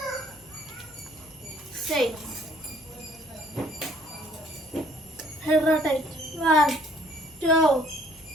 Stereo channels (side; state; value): both; normal; correlation 0.60